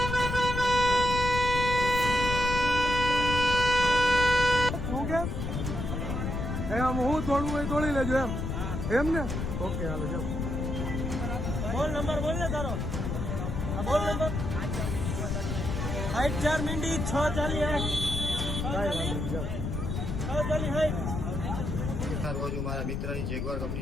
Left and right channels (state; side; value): noise; left; rumble, 3 dB below the sound